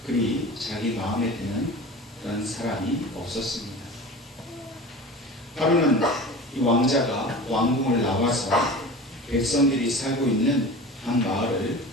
그리 자기 마음에 드는 그런 사람이 없었습니다. 하루는 이 왕자가 왕궁을 나와서 백성들이 살고 있는 한 마을을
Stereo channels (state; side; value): normal; both; correlation 0.35